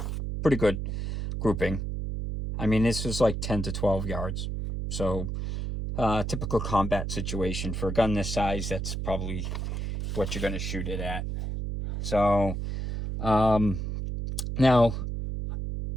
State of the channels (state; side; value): noise; right; hum, 3 dB below the sound